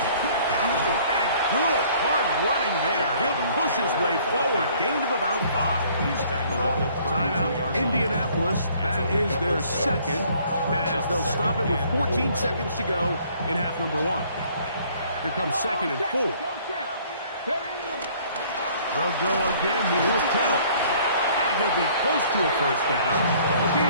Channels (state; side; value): inverted; both; correlation -0.58